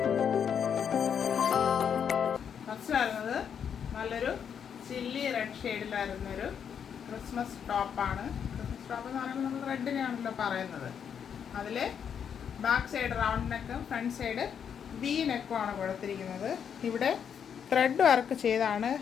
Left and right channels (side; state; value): right; quieter; 7.8 dB